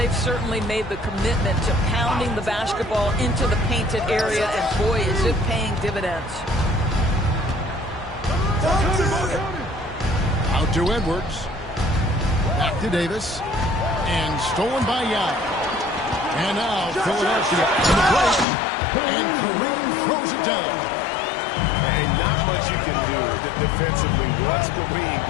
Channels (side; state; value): right; drops out; at 18.4 s